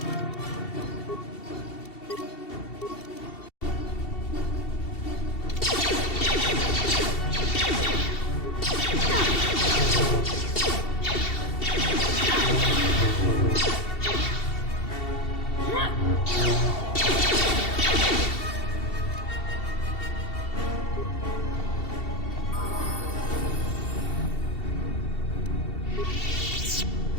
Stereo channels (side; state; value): right; late; 2.7 ms